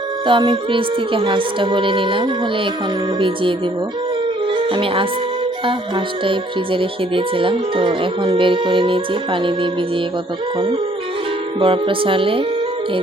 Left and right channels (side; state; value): both; normal; correlation 0.62